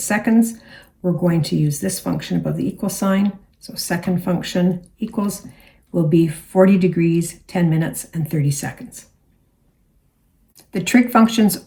seconds, we're going to use this function above the equal sign. So second function equals will be 40 degrees, 10 minutes, and 30 seconds. The trig functions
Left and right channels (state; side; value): identical; both; correlation 1.00